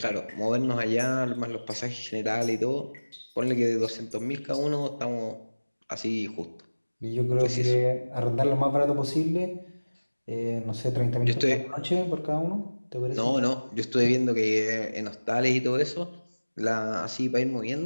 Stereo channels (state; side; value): inverted; both; correlation -1.00